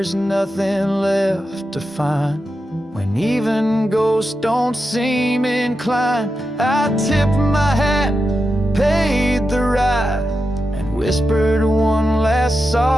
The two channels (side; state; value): both; normal; correlation 0.89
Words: nothing left to find. When even ghosts don't seem inclined, I tipped my hat, paid the ride, and whispered one last